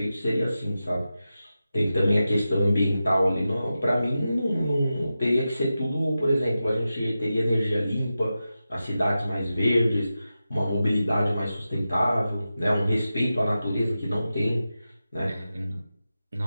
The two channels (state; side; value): inverted; both; correlation -0.92